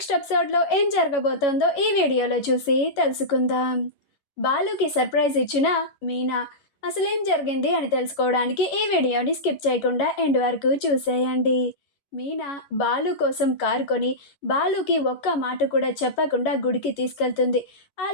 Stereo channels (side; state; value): right; late; 11 ms